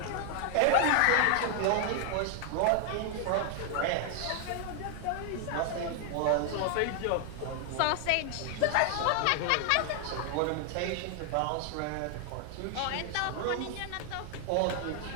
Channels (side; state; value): both; different; correlation 0.00